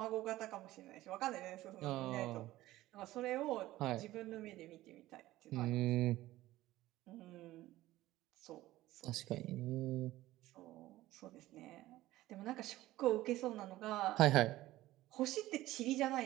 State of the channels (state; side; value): quieter; left; 16.3 dB